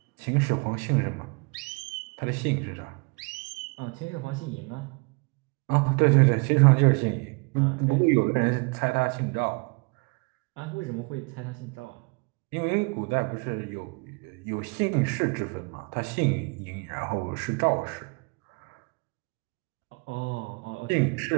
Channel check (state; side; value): quieter; left; 32.2 dB